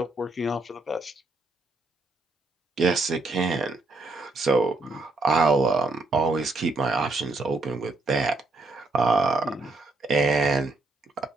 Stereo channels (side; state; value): left; quieter; 3.4 dB